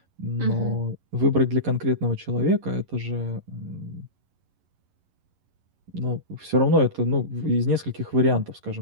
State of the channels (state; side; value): late; left; 11 ms